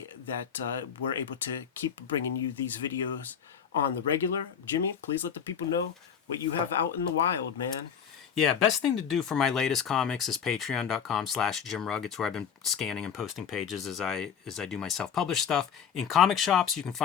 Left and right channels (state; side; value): quieter; right; 7.7 dB